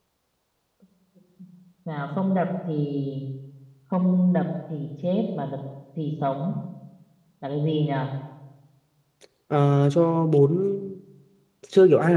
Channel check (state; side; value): identical; both; correlation 1.00